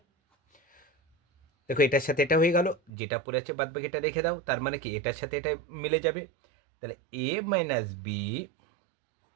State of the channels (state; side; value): drops out; left; at 2.9 s